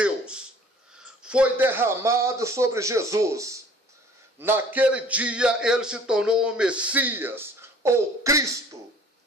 foi derramado sobre Jesus, naquele dia ele se tornou o Messias, ou Cristo,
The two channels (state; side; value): normal; both; correlation 0.52